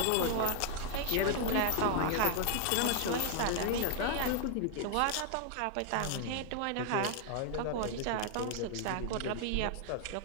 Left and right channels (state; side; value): different; both; correlation 0.00